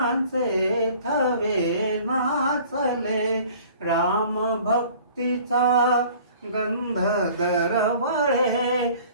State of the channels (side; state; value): both; inverted; correlation -0.50